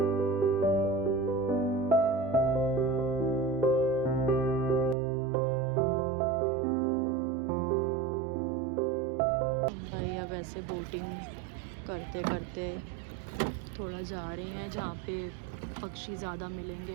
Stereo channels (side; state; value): left; drops out; at 5.0 s